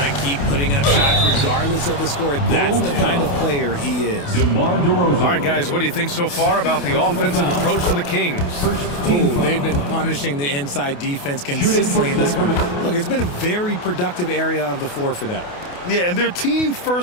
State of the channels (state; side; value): late; right; 28 ms